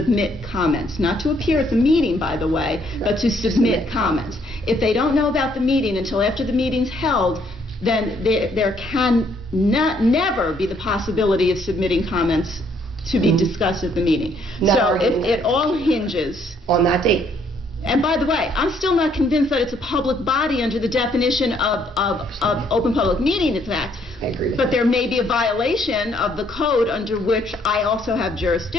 comments, not to appear at the meeting, by the way, but to submit comments. If they don't know about the meeting until after the meeting's held, then there can never be the possibility of submitting comments to be discussed at the meeting. So it all hinges. On that date. And by the way, I'm still not convinced that it's a public body under the definition of Open Public Meetings Act. I agree with But you. there may be a violation of the code under which I also have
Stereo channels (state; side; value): normal; both; correlation 0.67